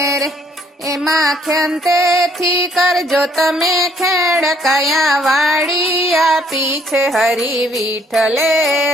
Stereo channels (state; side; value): normal; both; correlation 0.64